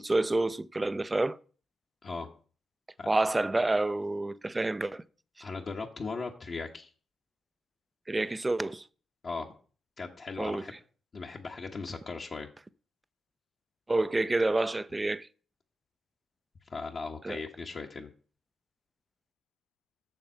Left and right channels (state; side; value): normal; both; correlation 0.97